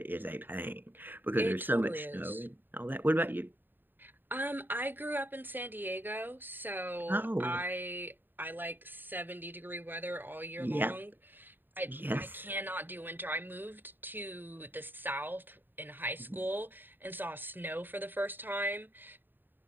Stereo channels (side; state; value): left; late; 0.093 ms